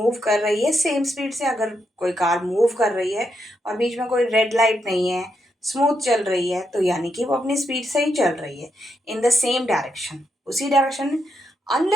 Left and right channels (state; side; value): normal; both; correlation 0.81